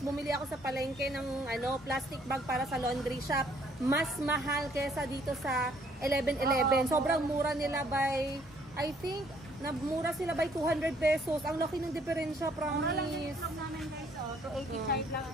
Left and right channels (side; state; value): both; normal; correlation 0.64